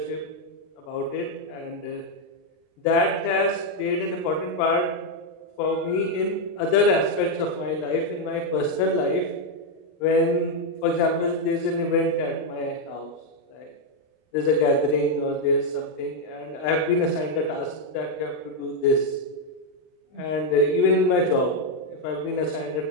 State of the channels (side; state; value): right; late; 39 ms